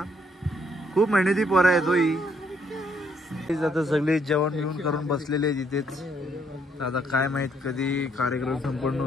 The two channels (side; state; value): both; normal; correlation 0.70